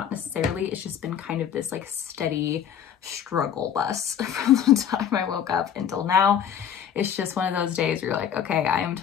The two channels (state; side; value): quieter; right; 8.8 dB